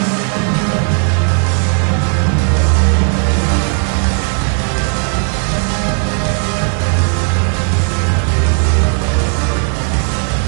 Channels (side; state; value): left; quieter; 39.0 dB